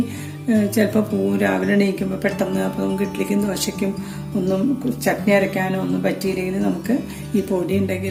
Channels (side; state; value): both; identical; correlation 1.00